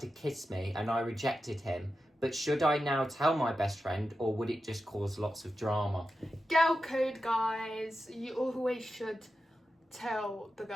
kiss me and I rejected him. But should I now tell my best friend or would it just cause lots of drama? Girl code, guys. You always should tell the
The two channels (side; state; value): both; normal; correlation 0.91